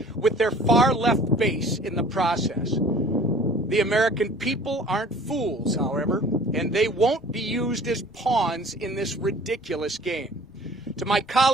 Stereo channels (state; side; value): noise; left; rumble, 28 dB below the sound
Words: with their far-left base in the process. The American people aren't fools, however, and they won't be used as pawns in this ridiculous game. To my